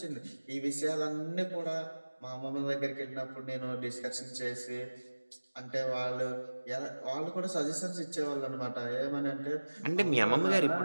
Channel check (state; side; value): inverted; both; correlation -1.00